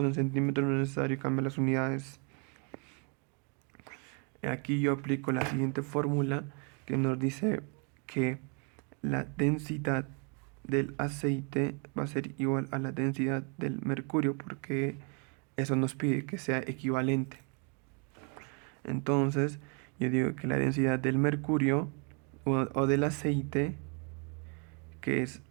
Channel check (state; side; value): quieter; left; 36.0 dB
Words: en centímetros, no es necesario cambiar las unidades. Aquí yo aplico la siguiente fórmula que nos dice que la densidad del aceite va a ser igual a la densidad del mercurio, porque eso nos pide que sea equivalente. Entonces yo digo que la densidad del mercurio o del aceite, que es